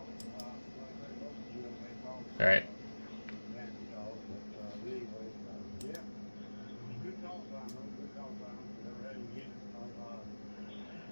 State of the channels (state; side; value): inverted; both; correlation -1.00